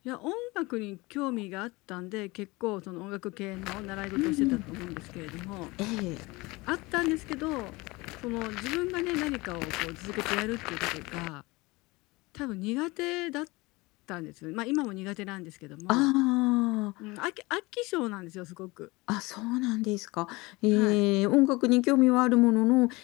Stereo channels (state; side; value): quieter; right; 23.1 dB